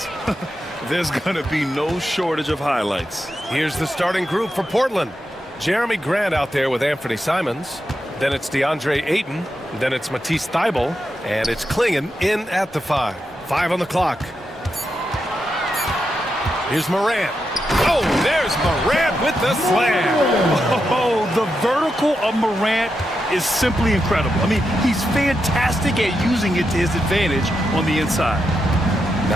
there's going to be no shortage of highlights. Here's the starting group for Portland. Jeremy Grant out there with Anthony Simons. Then it's DeAndre Ayton. Then it's Matisse Thybulle. And it's Klingon in at the 5. 5 on the clock. Here's Morant. Oh, there's Morant with the slam. Oh, the vertical of Morant is simply incredible. I mean, he's fantastic at using it to his advantage on the inside.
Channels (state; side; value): normal; both; correlation 0.86